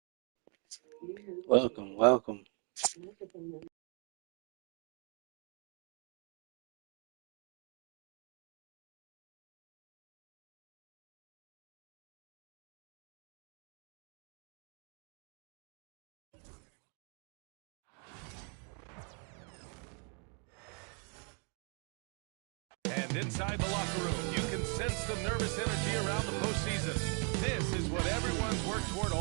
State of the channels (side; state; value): left; quieter; 38.0 dB